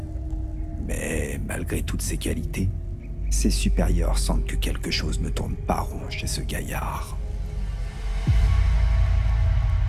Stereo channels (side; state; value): both; identical; correlation 1.00